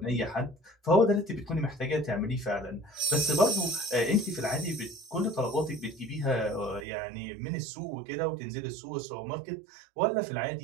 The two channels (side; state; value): left; drops out; at 6.8 s